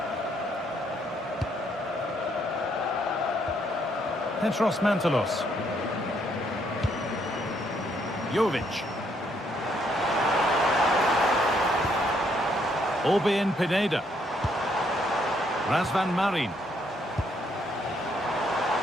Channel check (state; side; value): normal; both; correlation 0.71